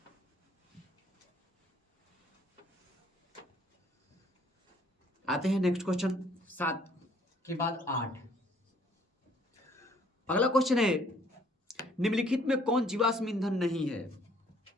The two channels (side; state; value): both; normal; correlation 0.61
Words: आते हैं नेक्स्ट क्वेश्चन, 7 के बाद 8। अगला क्वेश्चन है, निम्नलिखित में कौन जीवाश्म ईंधन नहीं है?